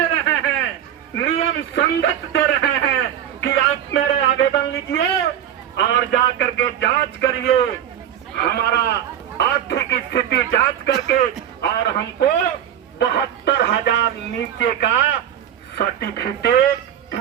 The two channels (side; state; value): left; quieter; 10.3 dB